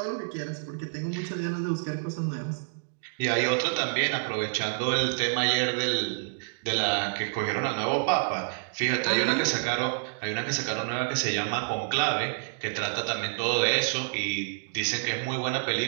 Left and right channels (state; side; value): silent; left; digital silence